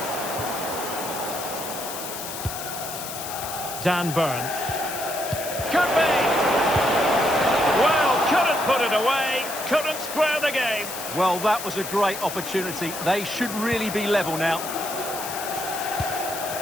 Dan Burn. Could be! Well, couldn't put it away, couldn't square the game. Well, that was a great opportunity. They should really be level now.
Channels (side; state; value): left; noise; hiss, 8 dB below the sound